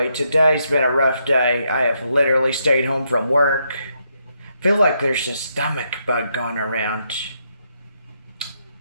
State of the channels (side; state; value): both; inverted; correlation -0.78